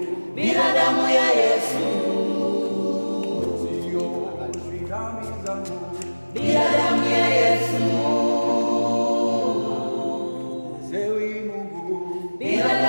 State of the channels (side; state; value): both; inverted; correlation -1.00